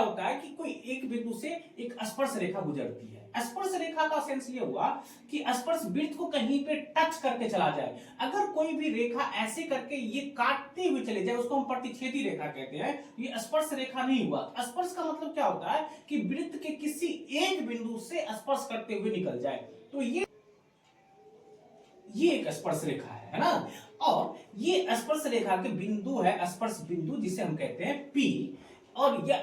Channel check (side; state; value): both; identical; correlation 1.00